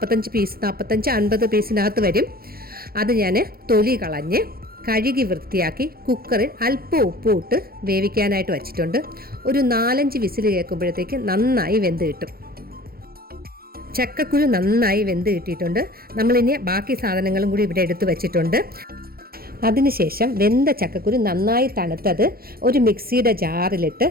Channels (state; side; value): late; left; 0.44 ms